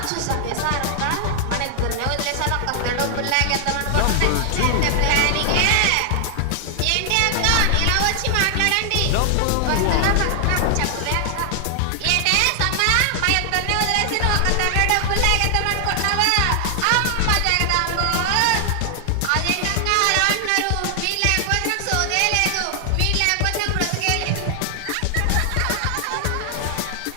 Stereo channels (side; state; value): both; different; correlation 0.00